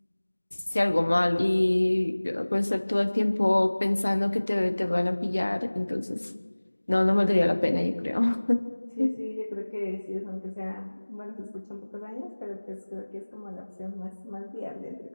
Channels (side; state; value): both; inverted; correlation -1.00